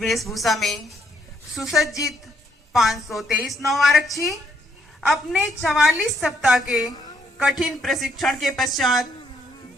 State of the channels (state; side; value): normal; both; correlation 0.72